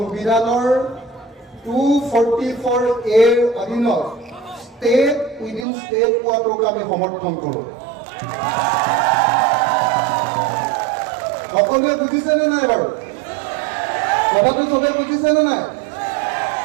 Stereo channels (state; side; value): drops out; left; at 5.7 s